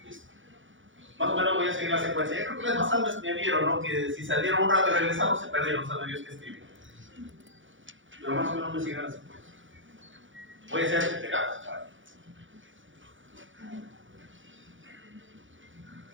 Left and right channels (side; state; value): left; late; 0.56 ms